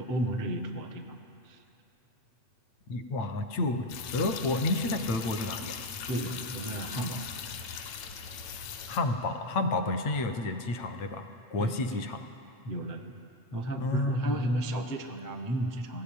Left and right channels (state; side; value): late; right; 9.0 ms